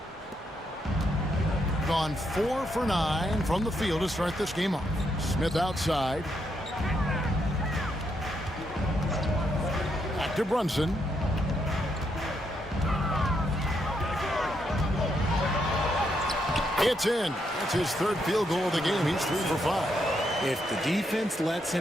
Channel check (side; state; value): both; normal; correlation 0.78